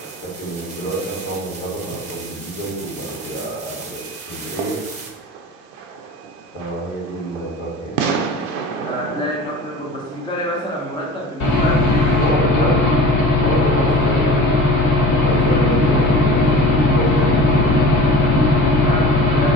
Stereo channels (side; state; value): both; normal; correlation 0.39